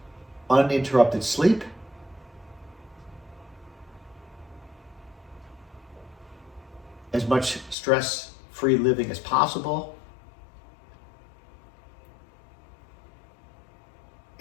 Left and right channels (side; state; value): right; drops out; at 7.8 s